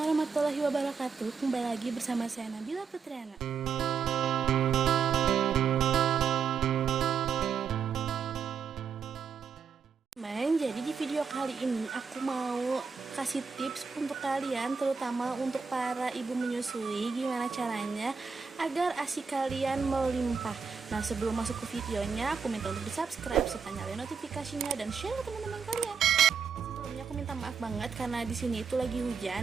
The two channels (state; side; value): quieter; left; 6.1 dB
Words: wabarakatuh. Kembali lagi bersama saya Nabila Putriana. Jadi di video kali ini aku mau kasih tips untuk kalian, terutama untuk para ibu menyusui, gimana caranya agar ASI kalian melimpah. Nah, sebelum masuk ke videonya, aku minta untuk di subscribe serta nyalain notifikasinya dan share ke teman-teman kalian. Sebelumnya aku minta maaf banget karena di sini itu lagi